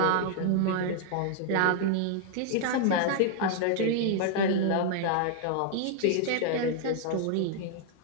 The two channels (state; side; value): different; both; correlation 0.00